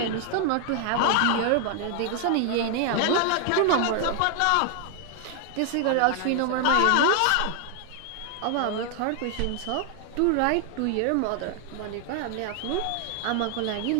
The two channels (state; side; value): different; both; correlation 0.00